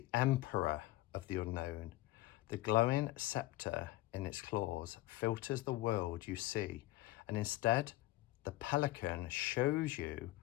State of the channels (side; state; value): right; quieter; 17.3 dB